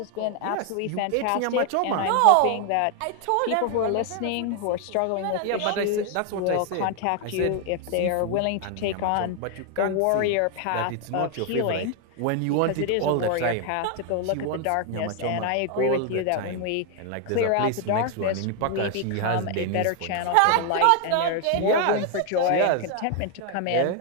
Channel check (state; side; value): different; both; correlation 0.00